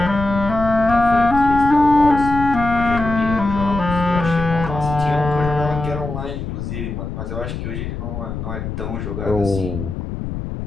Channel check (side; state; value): left; noise; rumble, 6 dB below the sound